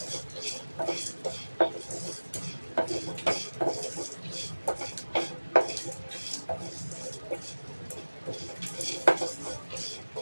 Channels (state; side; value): inverted; both; correlation -1.00